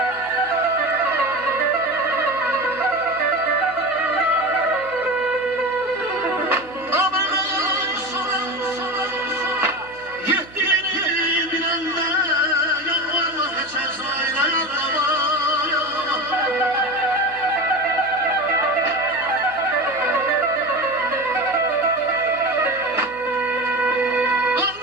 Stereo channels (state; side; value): noise; right; hum, 23 dB below the sound